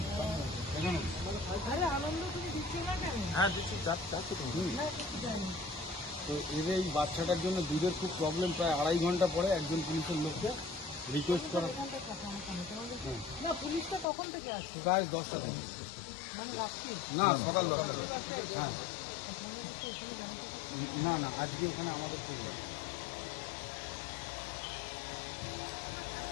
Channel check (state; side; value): drops out; right; at 14.1 s